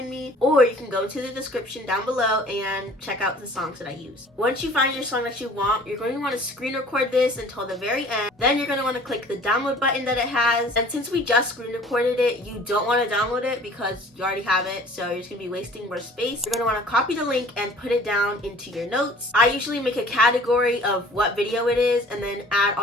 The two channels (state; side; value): normal; both; correlation 0.50